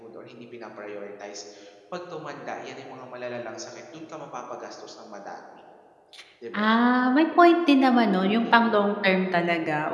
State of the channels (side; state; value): both; identical; correlation 1.00